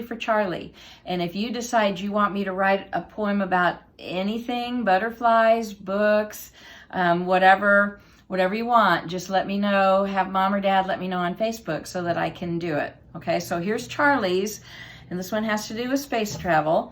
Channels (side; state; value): both; identical; correlation 1.00